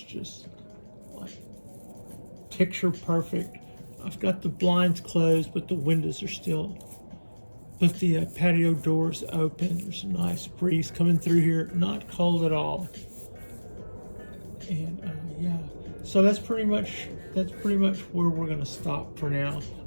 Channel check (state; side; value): inverted; both; correlation -1.00